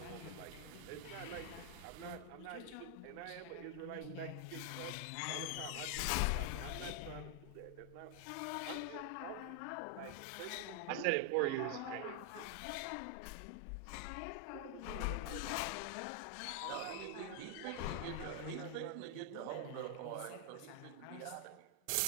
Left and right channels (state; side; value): different; both; correlation 0.00